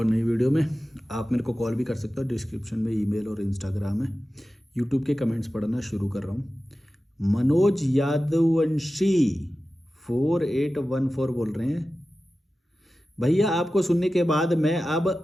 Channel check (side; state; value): both; normal; correlation 0.94